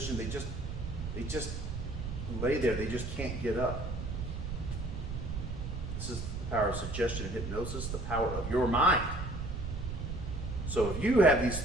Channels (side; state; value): right; noise; rumble, 5 dB below the sound